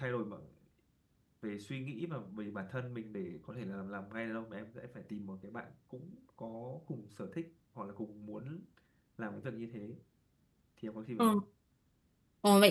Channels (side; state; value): both; identical; correlation 1.00